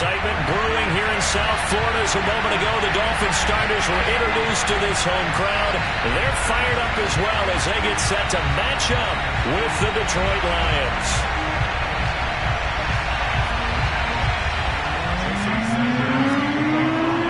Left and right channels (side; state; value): both; identical; correlation 1.00